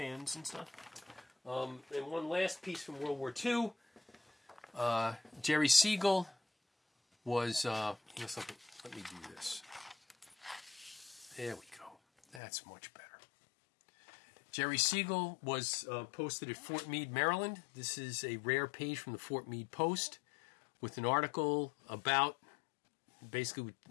and stuff. And one last piece from World War II. Jerry Siegel was, something. Let me do this. There we go. That's much better. Jerry Siegel was posted at Fort Meade, Maryland. This is a rare page from the Fort Meade Post with an article about, basically,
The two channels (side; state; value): right; drops out; at 12.4 s